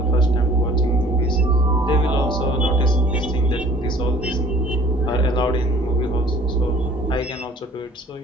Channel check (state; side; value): normal; both; correlation 0.52